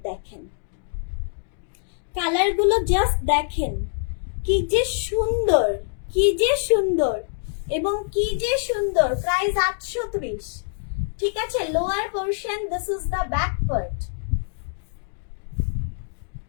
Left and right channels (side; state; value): right; silent; digital silence